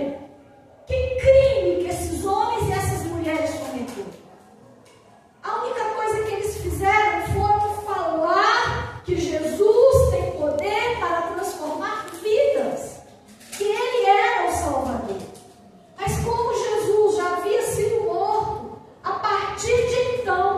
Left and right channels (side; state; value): both; identical; correlation 1.00